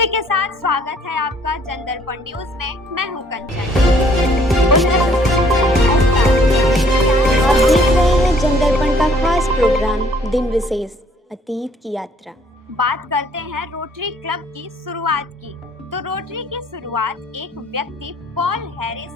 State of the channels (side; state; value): both; normal; correlation 0.61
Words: के साथ स्वागत है आपका जनदर्पण न्यूज में। मैं हूँ कंचन। आप देख रहे हैं जनदर्पण का खास प्रोग्राम दिन विशेष अतीत की यात्रा। बात करते हैं रोटरी क्लब की शुरुआत की। तो रोटरी की शुरुआत एक व्यक्ति पॉल